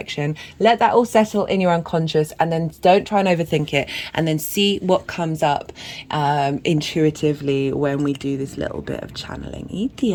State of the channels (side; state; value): both; identical; correlation 1.00